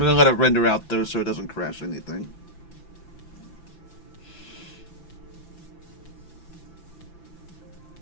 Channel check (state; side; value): late; right; 6.0 ms